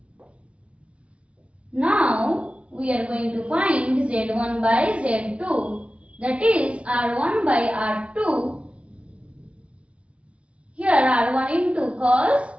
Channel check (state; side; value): late; left; 0.061 ms